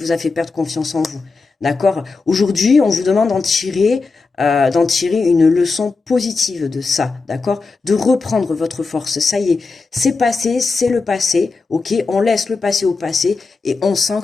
a fait perdre confiance en vous. D'accord? Aujourd'hui, on vous demande d'en tirer une leçon positive de ça. D'accord? De reprendre votre force. Ça y est, c'est passé, c'est le passé. Ok? On laisse le passé au passé et on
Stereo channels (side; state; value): right; quieter; 4.1 dB